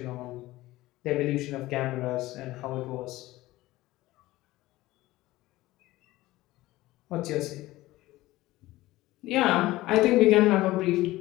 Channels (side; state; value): right; quieter; 17.6 dB